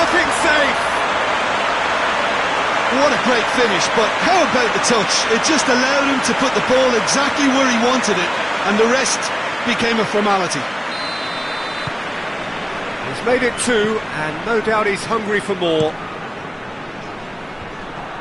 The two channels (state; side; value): identical; both; correlation 1.00